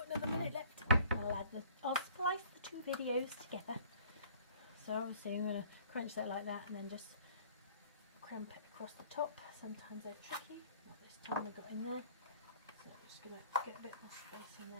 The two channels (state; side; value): inverted; both; correlation -0.53